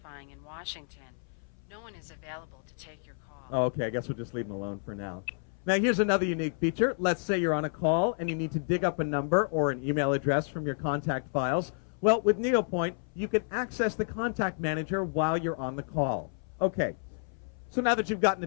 in Washington. No one is available to take your call. Oh, okay, I guess we'll just leave him alone for now. Now here's another unique feature. Let's say you're on a call and you need to dig up a number or an email address from your contact files. Well, with NeoPoint, you can access the contact manager while you're on the call. Okay, so now that you've gotten a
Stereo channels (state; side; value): silent; right; 58 dB below the other